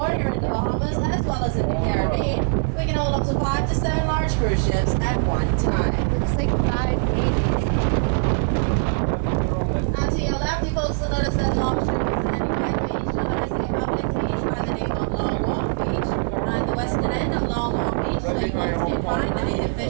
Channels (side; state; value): left; silent; 57 dB below the other